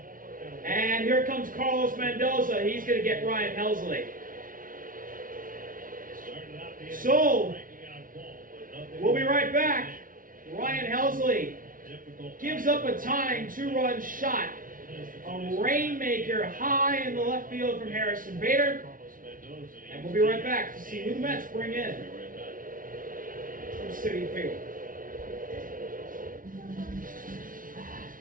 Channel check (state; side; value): late; left; 0.40 ms